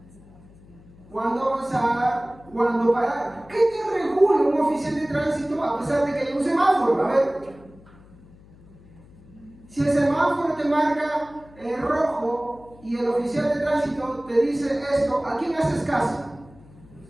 ¿Cuándo avanzar? ¿Cuándo parar? ¿Qué te regula un oficial de tránsito a pesar de que hay un semáforo? A ver, si el semáforo te marca rojo y el oficial de tránsito te dice esto, ¿a quién haces caso?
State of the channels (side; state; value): left; noise; hum, 24 dB below the sound